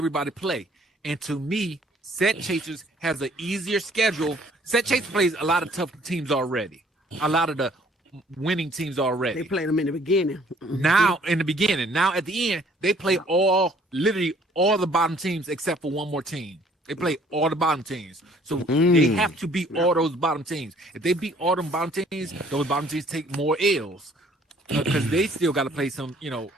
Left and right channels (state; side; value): normal; both; correlation 0.59